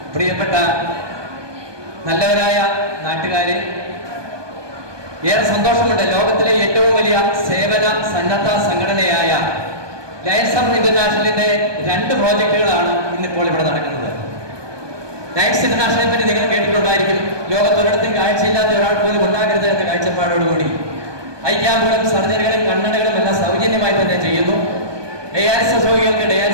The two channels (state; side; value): late; left; 1.2 ms